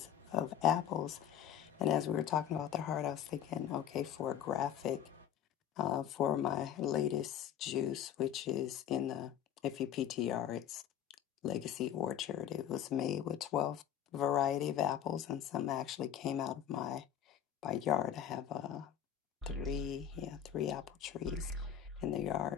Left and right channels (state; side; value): quieter; right; 9.8 dB